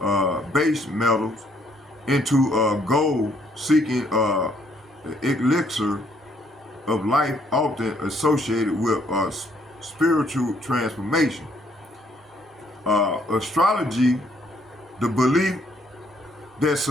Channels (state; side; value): normal; both; correlation 0.67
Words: base metals into gold, seeking the elixir of life, often associated with spiritual transformation. Astrology, the belief that